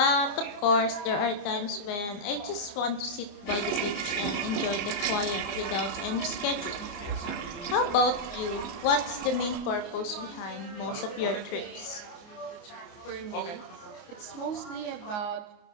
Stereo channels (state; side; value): late; right; 29 ms